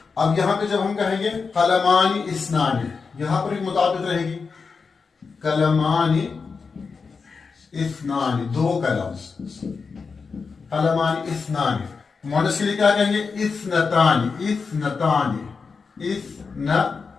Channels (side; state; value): right; quieter; 5.0 dB